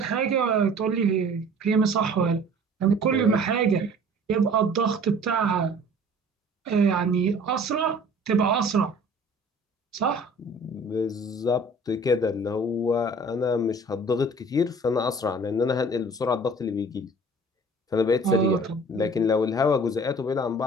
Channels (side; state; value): both; normal; correlation 0.48